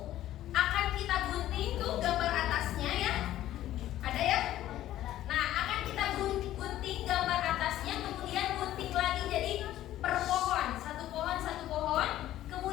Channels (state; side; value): quieter; right; 13.5 dB